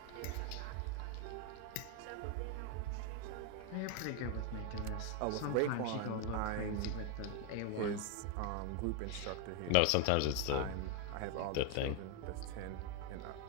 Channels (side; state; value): both; different; correlation 0.01